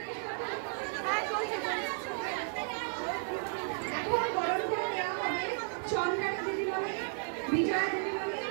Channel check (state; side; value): silent; left; 55 dB below the other